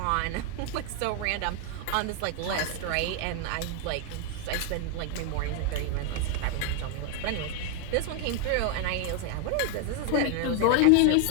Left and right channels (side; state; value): both; different; correlation 0.01